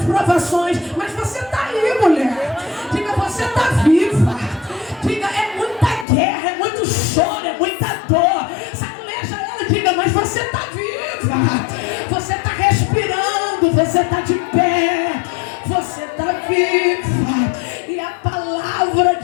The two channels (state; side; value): drops out; right; at 6.1 s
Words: provações, mas você está aí, mulher. Diga, você está viva. Diga, é muita guerra, é muito choro, é muita dor. Saculeja ela e diga, mas você está viva. Você está respirando, você está de pé, você está viva. E a palavra